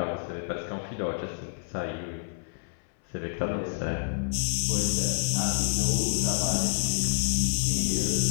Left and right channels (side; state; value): right; silent; 59 dB below the other